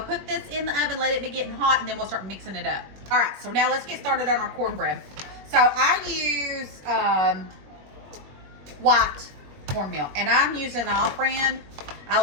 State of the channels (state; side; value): late; left; 21 ms